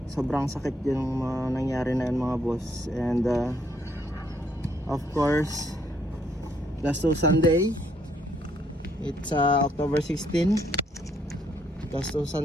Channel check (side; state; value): both; normal; correlation 0.70